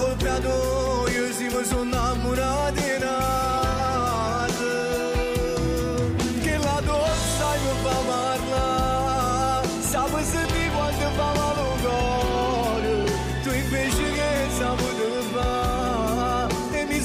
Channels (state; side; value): identical; both; correlation 1.00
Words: tua, io sì mi sono innamorato di nada. Che la donna mi fa parlare, sape senti quando fa male il cuore, tu invece che saputo fare. E mi